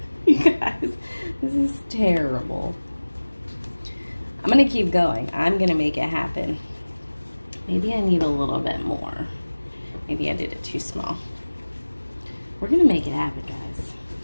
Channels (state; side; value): inverted; both; correlation -1.00